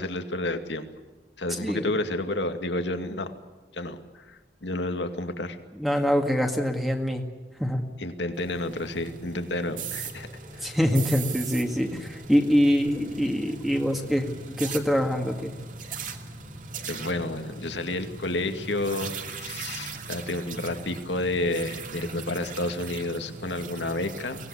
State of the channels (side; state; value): both; normal; correlation 0.68